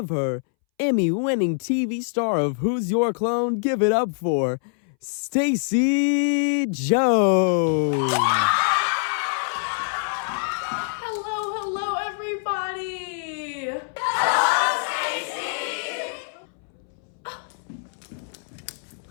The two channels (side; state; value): right; silent; 62 dB below the other